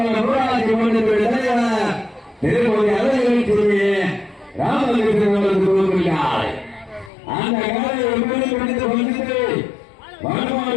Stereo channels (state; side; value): drops out; right; at 7.1 s